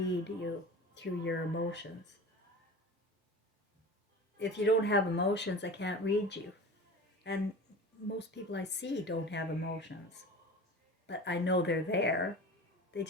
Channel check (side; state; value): both; normal; correlation 0.35